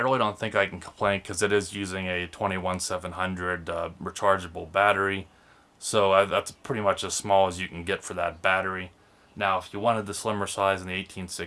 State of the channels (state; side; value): identical; both; correlation 1.00